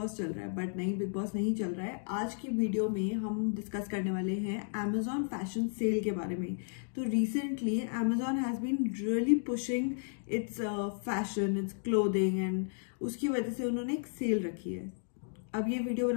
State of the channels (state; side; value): silent; right; digital silence